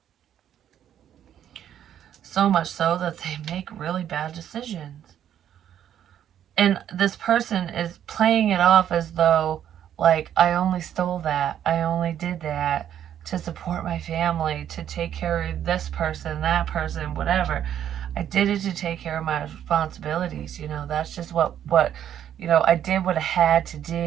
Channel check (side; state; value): left; quieter; 10.1 dB